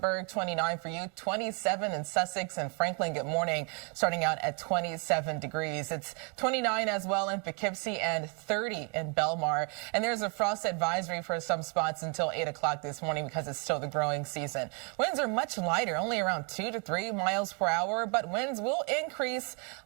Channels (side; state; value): left; quieter; 35.6 dB